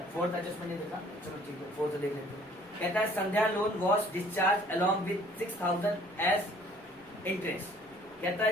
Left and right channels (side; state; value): left; noise; rumble, 30 dB below the sound